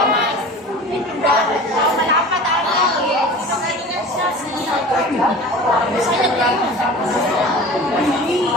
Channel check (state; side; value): normal; both; correlation 0.38